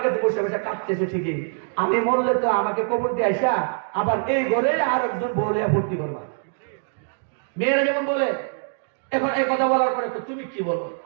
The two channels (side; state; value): left; silent; digital silence